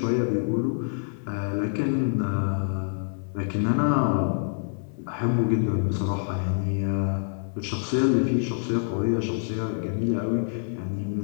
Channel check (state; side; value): silent; right; digital silence